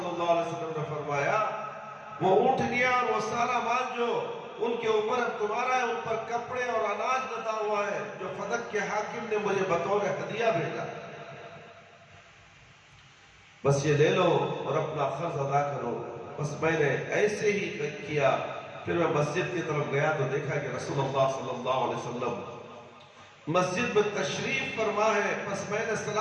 اللہ علیہ وسلم نے فرمایا وہ اونٹنیاں اور وہ سارا مال جو ان کے اوپر اب تمہارا ہے، ان پر کپڑے اور اناج لدا ہوا ہے جو فدق کے حاکم نے مجھے بطور ہدیہ بھیجا، بس یہ لے لو اور اپنا قرض ادا کرو۔ بس میں نے ایسے ہی کیا۔ پھر میں مسجد کی طرف گیا تو دیکھا کہ رسول اللہ صلی اللہ علیہ وسلم مسجد میں تشریف فرما ہے۔ بس میں نے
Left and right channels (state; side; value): identical; both; correlation 1.00